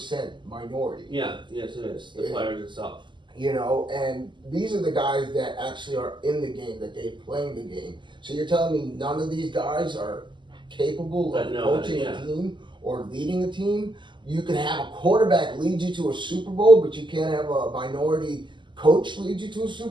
minority. Yes it is. The players itself. And these are the guys that actually are in the game, that they're playing the game. So you're telling me none of these guys are capable of coaching a team or leading a team? You can have a quarterback lead you to a Super Bowl, but you can't have a minority coach lead you to a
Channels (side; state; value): left; late; 0.23 ms